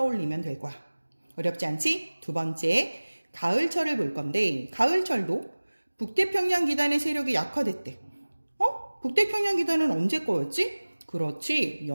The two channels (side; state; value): both; inverted; correlation -1.00